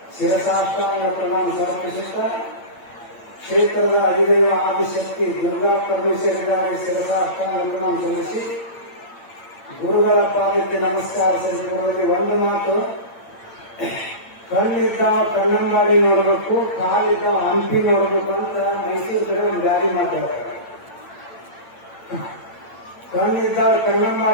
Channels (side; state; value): right; late; 8.7 ms